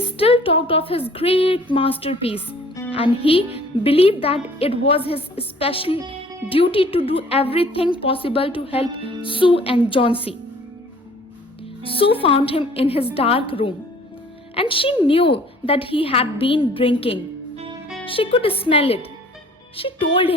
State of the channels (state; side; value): normal; both; correlation 0.53